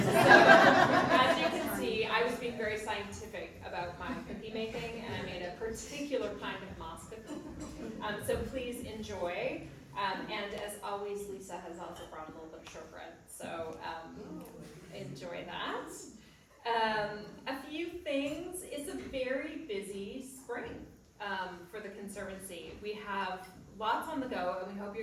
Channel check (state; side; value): identical; both; correlation 1.00